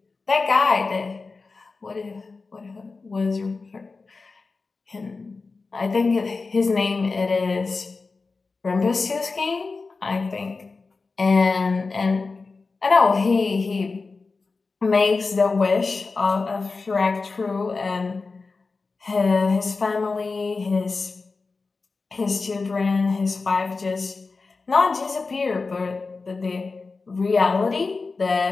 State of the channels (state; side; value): quieter; right; 4.1 dB